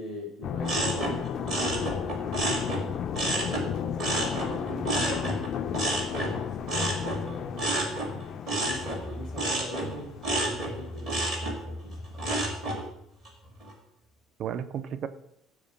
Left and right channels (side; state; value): both; normal; correlation 0.50